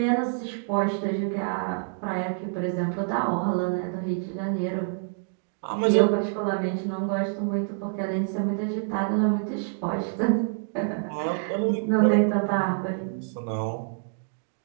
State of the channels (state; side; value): silent; left; digital silence